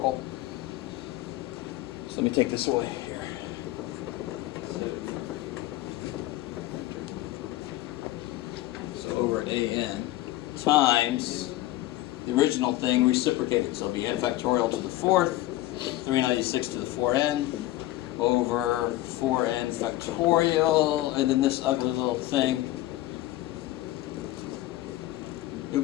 So let me take this away here. So over an times the original thing reciprocated. So it'll be n factorial to the 4th, 396 to the 4n, over 4n factorial, and then this ugly little thing.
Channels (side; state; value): right; quieter; 16.1 dB